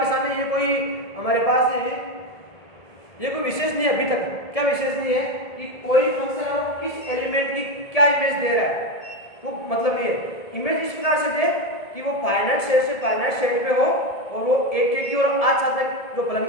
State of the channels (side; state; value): right; late; 1.7 ms